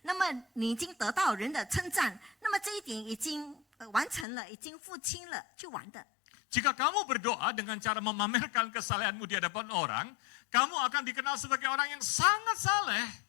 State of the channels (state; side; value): drops out; right; at 4.2 s